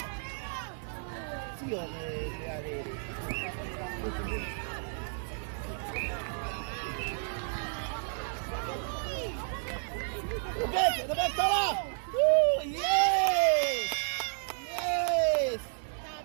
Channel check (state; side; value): silent; left; digital silence